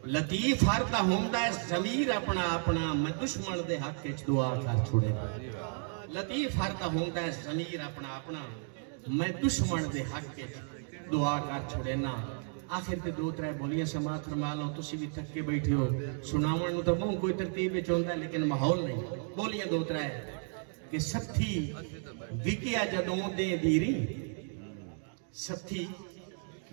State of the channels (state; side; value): silent; left; 56 dB below the other